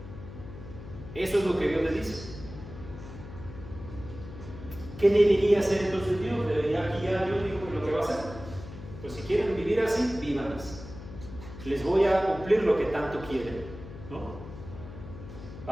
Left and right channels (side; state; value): left; noise; hum, 13 dB below the sound